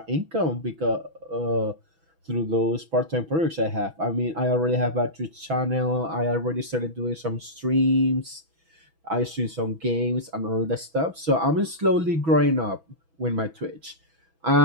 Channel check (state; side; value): late; left; 6.1 ms